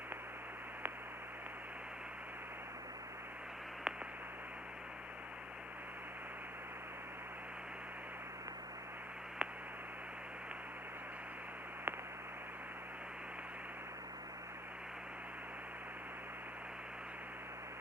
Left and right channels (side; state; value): both; normal; correlation 0.59